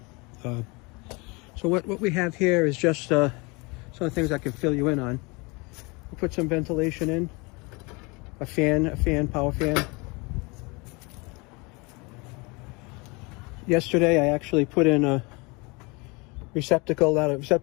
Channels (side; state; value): right; quieter; 27.6 dB